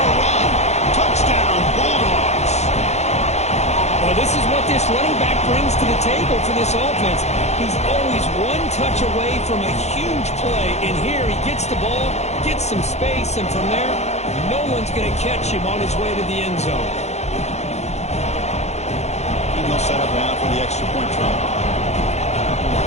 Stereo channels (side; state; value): right; late; 0.32 ms